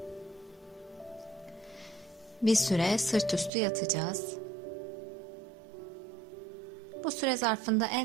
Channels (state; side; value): drops out; left; at 3.5 s